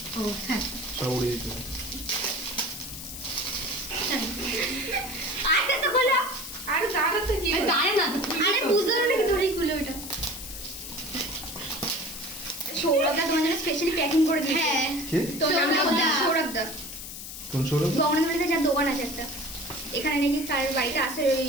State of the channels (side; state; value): left; noise; hiss, 10 dB below the sound